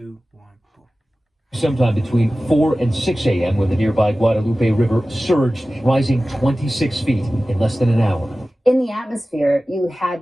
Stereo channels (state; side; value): normal; both; correlation 0.96